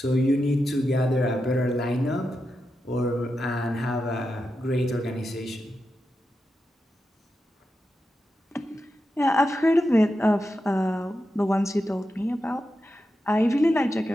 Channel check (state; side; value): normal; both; correlation 0.89